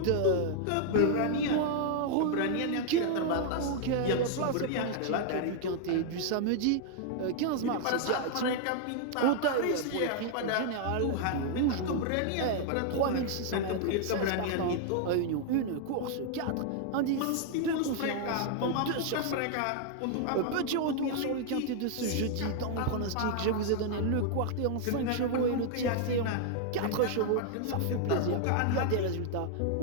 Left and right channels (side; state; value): both; different; correlation 0.00